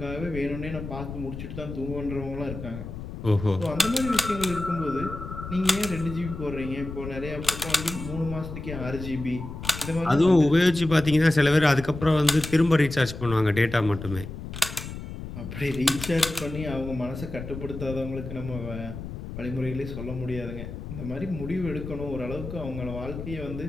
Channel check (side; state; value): left; noise; rumble, 9 dB below the sound